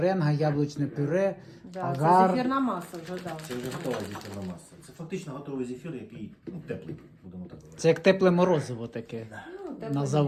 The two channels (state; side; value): identical; both; correlation 1.00